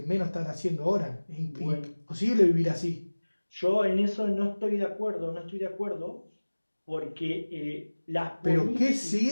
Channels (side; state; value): both; inverted; correlation -1.00